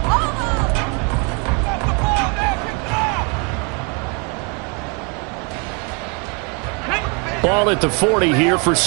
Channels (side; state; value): left; quieter; 34.1 dB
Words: Ball at the 40 here for